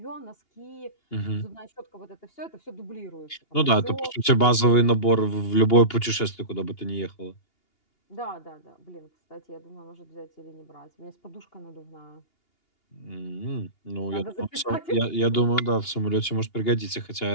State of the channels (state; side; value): late; right; 2.8 ms